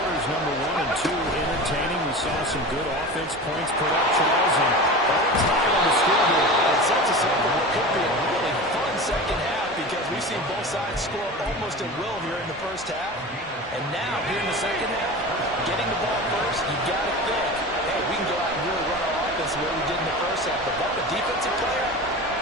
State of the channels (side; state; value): both; normal; correlation 0.31